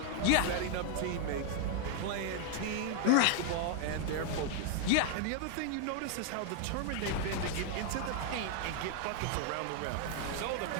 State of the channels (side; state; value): both; different; correlation 0.00